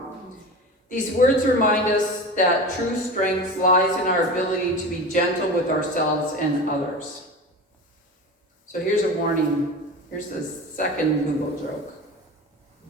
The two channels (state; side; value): normal; both; correlation 0.31